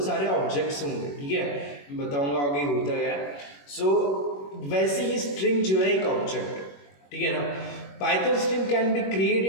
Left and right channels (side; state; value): right; late; 21 ms